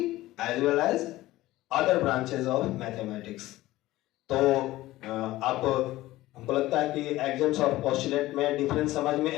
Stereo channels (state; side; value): quieter; right; 16.9 dB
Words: as well as other branches of mathematics। तो आप हमको लगता है कि एक्सिम्स और पोस्टुलेट में डिफरेंस समझ